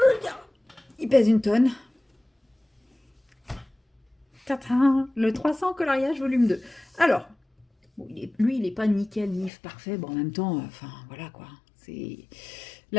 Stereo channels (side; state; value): right; drops out; at 9.5 s